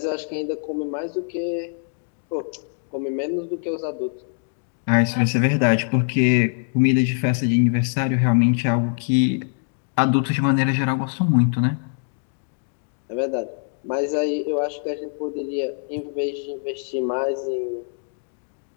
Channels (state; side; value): silent; right; 63 dB below the other